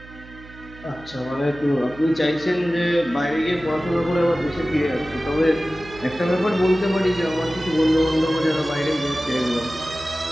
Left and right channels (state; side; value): noise; right; hum, 19 dB below the sound